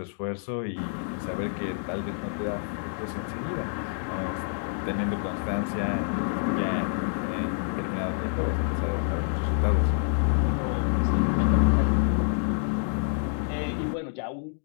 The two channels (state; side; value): silent; right; digital silence